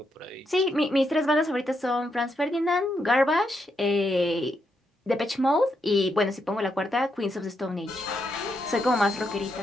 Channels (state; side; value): normal; both; correlation 0.81